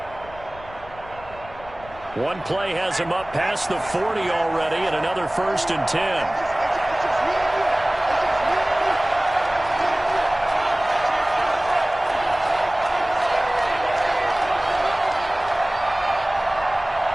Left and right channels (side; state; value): left; noise; rumble, 19 dB below the sound